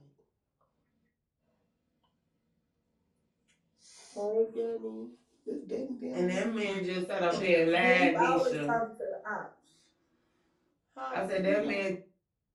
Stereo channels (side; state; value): both; identical; correlation 1.00